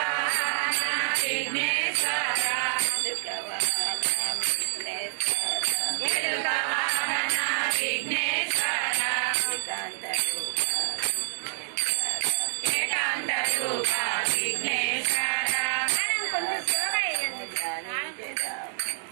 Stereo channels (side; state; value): left; silent; digital silence